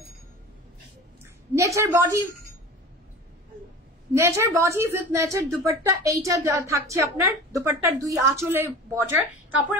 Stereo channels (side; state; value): both; normal; correlation 0.36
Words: নেটের body nature body with nature dupatta, এইটা থাকছে আপনার দুপাট্টার 2 আঁচলে বর্ডার,